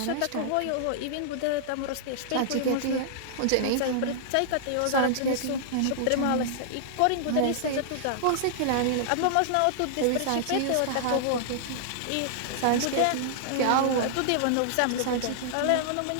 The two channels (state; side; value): different; both; correlation -0.01